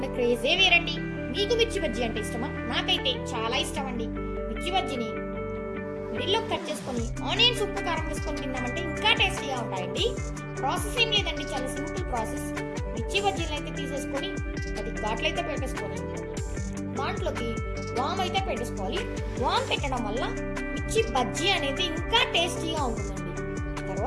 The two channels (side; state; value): both; identical; correlation 1.00